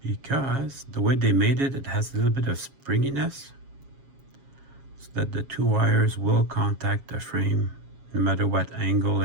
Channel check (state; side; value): late; left; 7.4 ms